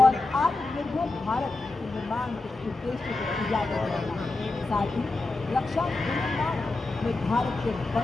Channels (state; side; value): quieter; right; 3.2 dB